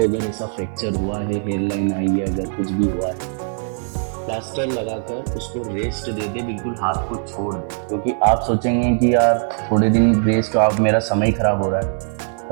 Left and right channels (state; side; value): silent; left; 65 dB below the other